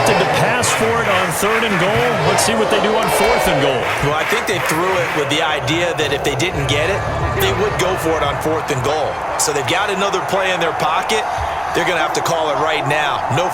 to pass for it on 3rd and goal. Let's see what they do on 4th and goal. Well, I think they threw it with the idea that if they didn't get it, they would go for it on 4th and goal. So they've got another play in their pocket. They're going to have to call it right now. No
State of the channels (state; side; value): identical; both; correlation 1.00